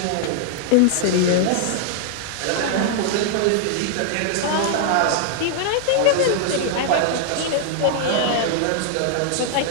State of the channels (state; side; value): different; both; correlation -0.01